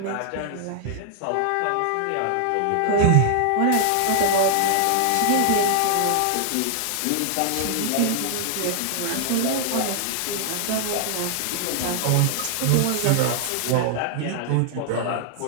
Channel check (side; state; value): both; different; correlation 0.00